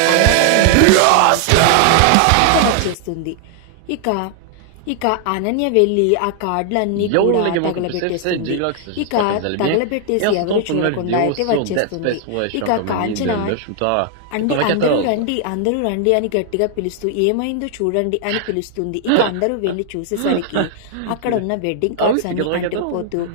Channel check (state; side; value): different; both; correlation 0.00